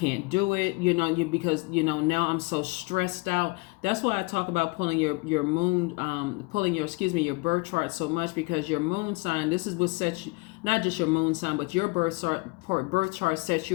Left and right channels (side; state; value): right; quieter; 27.8 dB